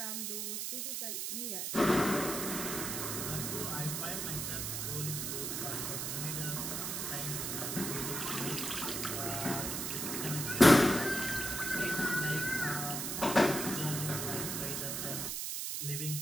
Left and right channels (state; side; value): noise; right; hiss, 2 dB below the sound